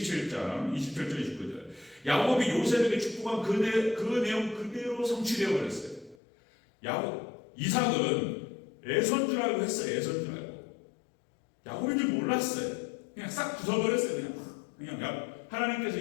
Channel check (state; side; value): drops out; right; at 6.2 s